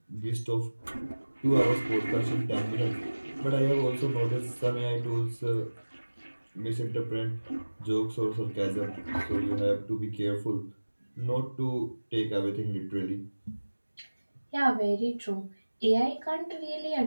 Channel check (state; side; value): inverted; both; correlation -1.00